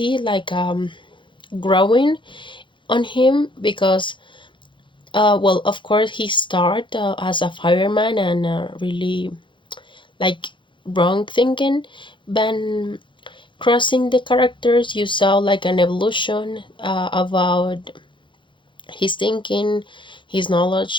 like growing on him because well, of course he started as a fireman and really like wrong thinking, but crossing the characters you saw like an evolution about his thinking, his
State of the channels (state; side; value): late; right; 0.24 ms